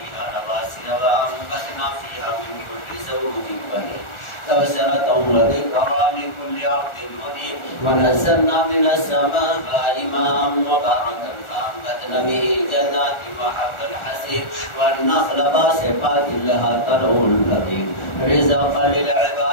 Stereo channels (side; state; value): right; late; 1.4 ms